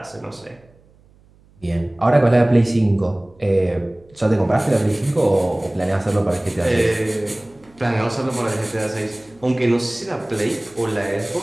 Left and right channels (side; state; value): right; noise; hum, 30 dB below the sound